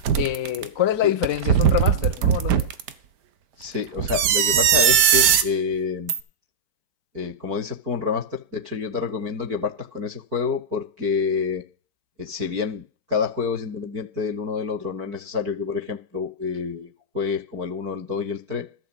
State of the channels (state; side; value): late; left; 5.0 ms